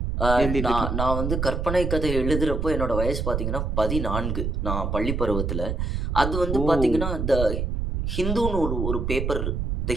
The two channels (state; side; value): noise; right; rumble, 1 dB below the sound